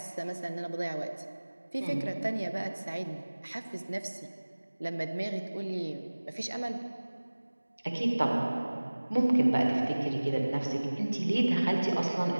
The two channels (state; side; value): inverted; both; correlation -1.00